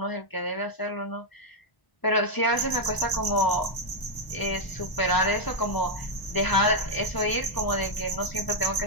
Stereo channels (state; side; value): late; right; 1.0 ms